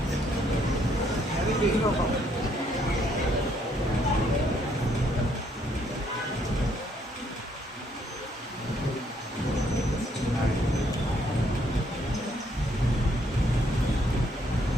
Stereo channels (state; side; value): normal; both; correlation 0.69